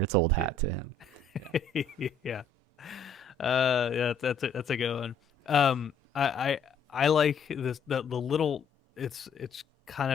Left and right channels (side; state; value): right; quieter; 4.0 dB